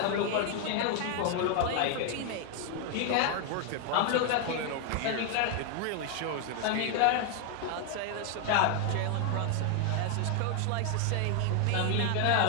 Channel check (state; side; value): different; both; correlation 0.00